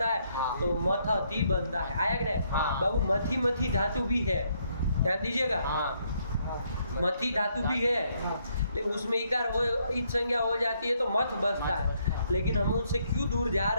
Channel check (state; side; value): inverted; both; correlation -0.72